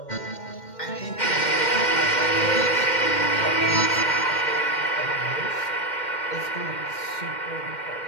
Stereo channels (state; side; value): late; right; 2.1 ms